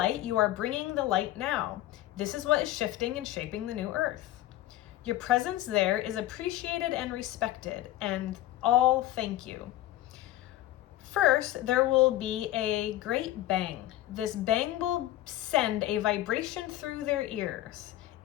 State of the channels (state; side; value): quieter; right; 14.9 dB